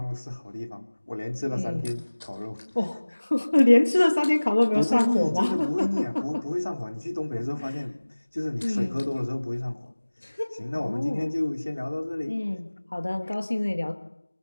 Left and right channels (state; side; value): inverted; both; correlation -1.00